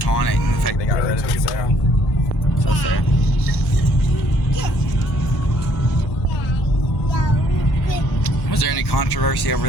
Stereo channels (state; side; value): normal; both; correlation 0.64